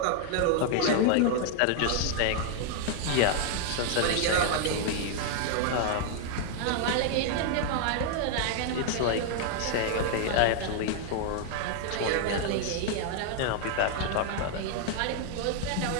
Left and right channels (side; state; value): both; different; correlation 0.00